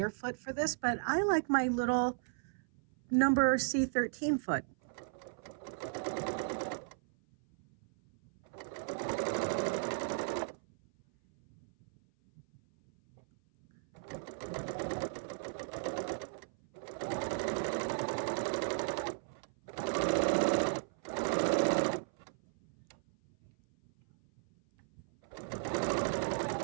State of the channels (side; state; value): left; silent; 54 dB below the other